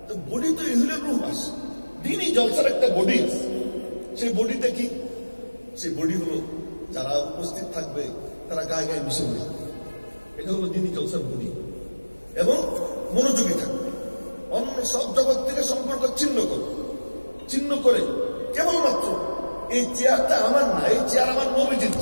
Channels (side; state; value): both; inverted; correlation -1.00